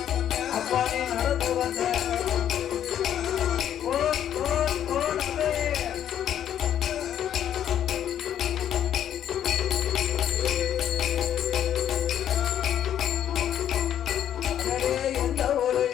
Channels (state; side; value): quieter; right; 10.2 dB